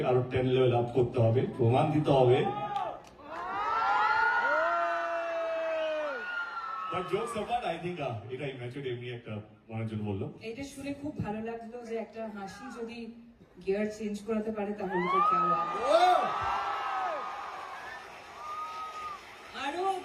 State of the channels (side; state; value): both; identical; correlation 1.00